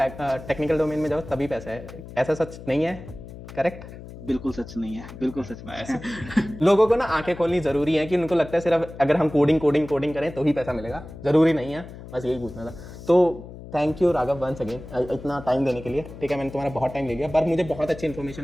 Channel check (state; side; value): noise; left; hum, 14 dB below the sound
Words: टेक्निकल डोमेन में जाओ तभी पैसा है, ऐसा सच नहीं है, करेक्ट? बिल्कुल सच नहीं है, बिल्कुल सच नहीं है. लोगों को ना आंखें खोलनी जरूरी है, कि उनको लगता है सिर्फ अगर हम कोडिंग करें तो ही पैसा मिलेगा, जरूरी नहीं है. बस यही पूछना था. तो thank you Raghav once again इतना टाइम देने के लिए, ठीक है. मैंने तुम्हारा बहुत टाइम ले लिया, पर मुझे बहुत अच्छी इन्फॉर्मेशन